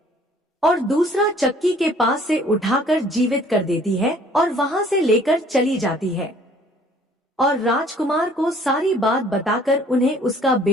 और दूसरा चक्की के पास से उठाकर जीवित कर देती है और वहां से लेकर चली जाती है और राजकुमार को सारी बात बताकर उन्हें उसका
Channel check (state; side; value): normal; both; correlation 0.56